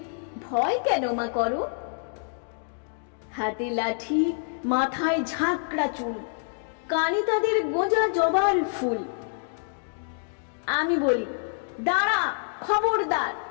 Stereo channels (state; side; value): silent; right; digital silence